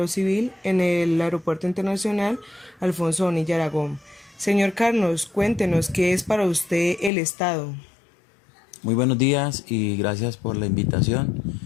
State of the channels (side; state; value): right; drops out; at 7.1 s